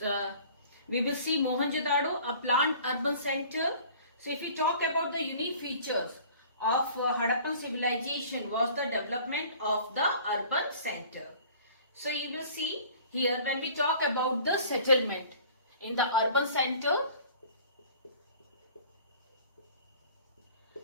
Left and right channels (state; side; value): inverted; both; correlation -0.48